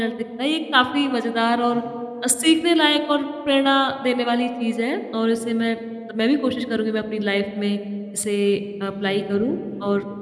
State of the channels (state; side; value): identical; both; correlation 1.00